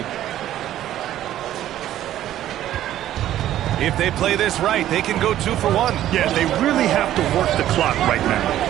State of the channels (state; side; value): quieter; left; 12.6 dB